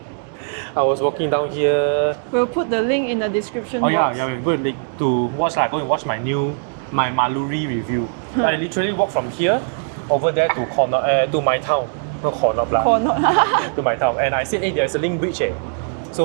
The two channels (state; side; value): silent; left; digital silence